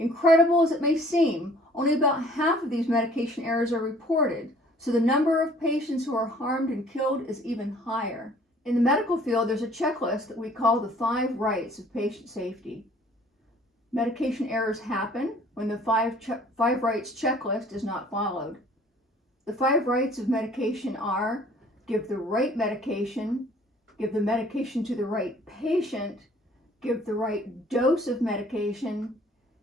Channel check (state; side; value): normal; both; correlation 0.55